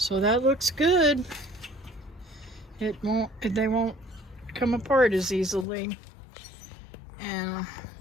that looks good. They won't come apart as easily. And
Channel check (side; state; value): right; drops out; at 5.7 s